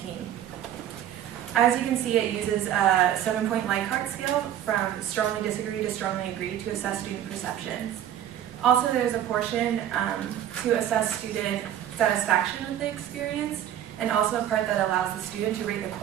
As you can see, it uses a 7-point Likert scale from strongly disagree to strongly agree to assess student perceptions. Also, there's a portion to assess student satisfaction with the experience, and also a part that allows the student to rate the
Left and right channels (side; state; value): left; quieter; 11.1 dB